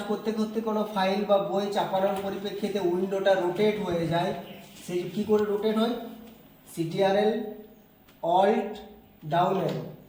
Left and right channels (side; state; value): both; identical; correlation 1.00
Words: করতে করতে কোনো ফাইল বা বই চাপানোর পরিপ্রেক্ষিতে উইন্ডোটা রোটেট হয়ে যায়, সেই কী করে রোটেট হয়? সিটিআরএল অল্ট ডাউন অ্যারো,